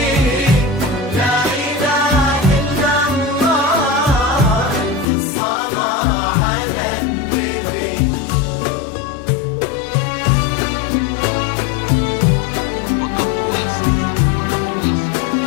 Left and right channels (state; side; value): drops out; right; at 5.1 s